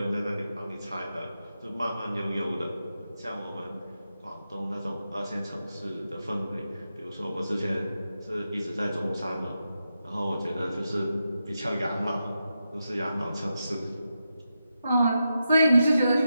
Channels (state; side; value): inverted; both; correlation -0.88